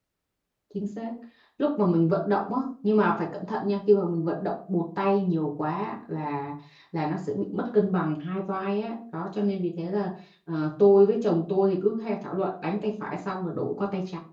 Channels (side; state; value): both; identical; correlation 1.00